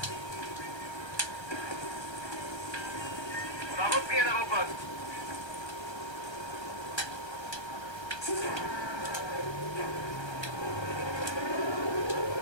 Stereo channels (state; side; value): late; right; 1.3 ms